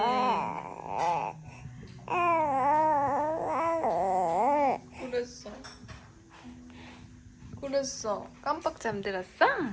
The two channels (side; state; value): both; identical; correlation 1.00